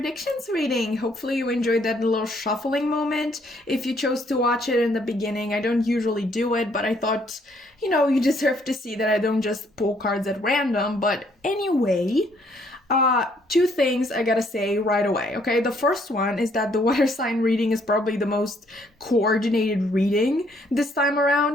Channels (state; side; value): normal; both; correlation 0.67